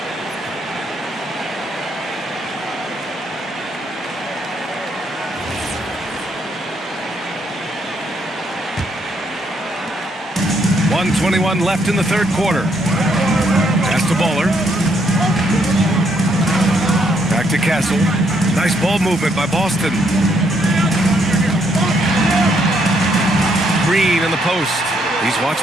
.121 left in the third quarter. Pass to Baller. Back to Castle. Nice ball movement by Boston. Green in the post. He's watched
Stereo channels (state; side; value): normal; both; correlation 0.73